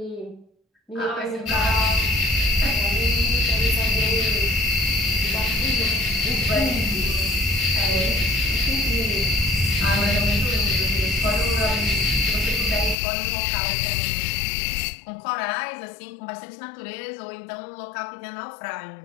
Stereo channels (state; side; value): drops out; right; at 13.0 s